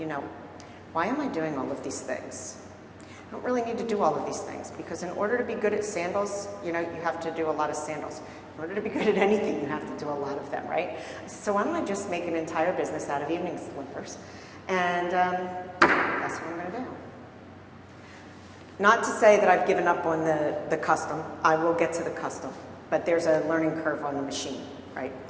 why am I doing all of these things? I don't really need to do all of these things, because in order to be good at sandals, you have to do a lot of sandals. In order to be good at anything, you have to do a lot of them, right? So why don't I just make an entire business out of evening slippers? And that's what I'm going to do. Not to say that I've given up on the custom. I will get to the custom, but there's a learning curve on the machine, right?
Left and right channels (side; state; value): both; identical; correlation 1.00